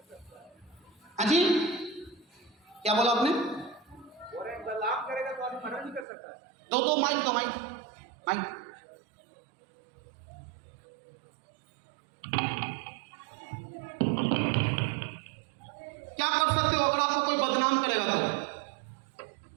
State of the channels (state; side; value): drops out; left; at 6.1 s